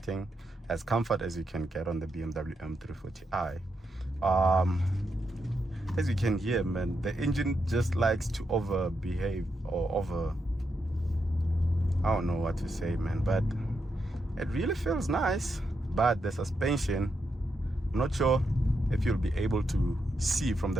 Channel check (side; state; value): both; normal; correlation 0.83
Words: as comfort as you can get on the BMW M340i. As you can hear, man, the engine just likes to overbehave or I don't know what to say, man, but it really feels nice. But the suspension, I'm not sure if you'll be able to see from